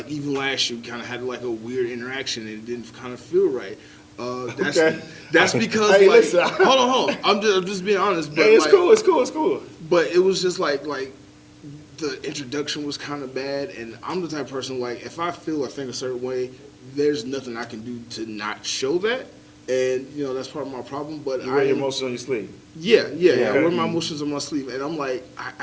even last year, we kind of had like a weird interaction, and it didn't kind of feel right. That's because Hey, like, listen. hold on, I'm just being honest. But Hey, it's like, cool. It's cool. It's cool. But it was just like the introduction was kind of bad, and I'm the type of person like if I feel or think a certain way, there's nothing I can do to not show that, and that's part of my problem. But You wear your emotions on your sleeve. yeah. Okay. I wear my emotions on my sleeve, and I'm like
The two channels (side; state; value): both; identical; correlation 1.00